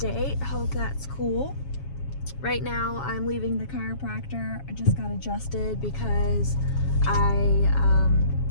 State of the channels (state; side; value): late; right; 7.3 ms